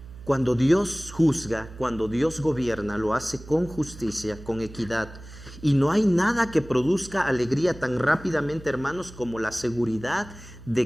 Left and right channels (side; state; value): right; noise; hum, 17 dB below the sound